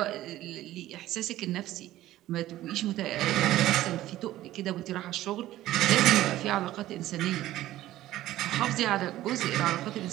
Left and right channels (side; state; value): left; quieter; 14.8 dB